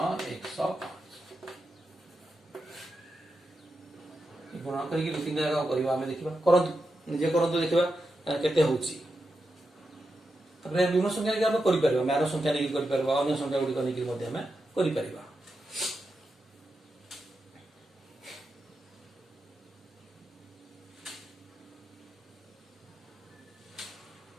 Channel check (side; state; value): both; normal; correlation 0.88